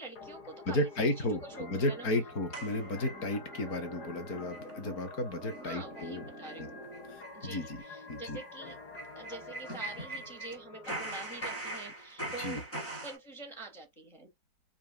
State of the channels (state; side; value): late; right; 4.4 ms